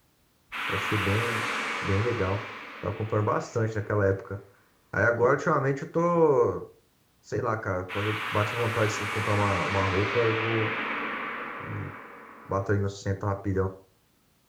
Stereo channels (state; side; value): identical; both; correlation 1.00